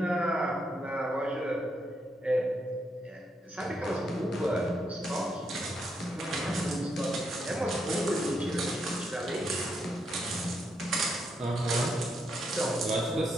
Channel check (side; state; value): both; normal; correlation 0.79